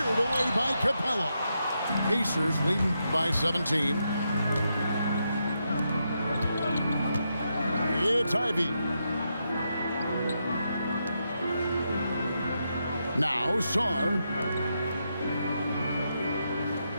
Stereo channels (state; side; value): inverted; both; correlation -0.83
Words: away by Capella. Pacers leading by 17. It's Ivy. Now Sarr.